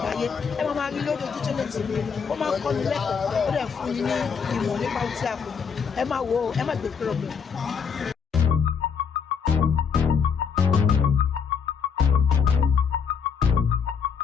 ẹ máa rí lórí Ojútólé TV. Ó máa ń kọ́ni lẹ́kọ̀ọ́, ó dẹ̀ fún yín ní ìmọ̀ nípa ohun tí a kò. Ẹ máa wo, ẹ má gbé kúrò bẹ́ẹ̀.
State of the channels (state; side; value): quieter; right; 6.3 dB